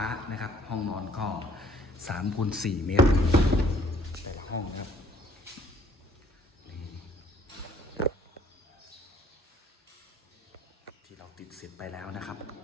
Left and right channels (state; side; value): normal; both; correlation 0.60